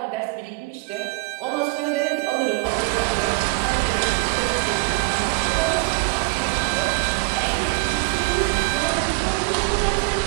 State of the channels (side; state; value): left; quieter; 27.3 dB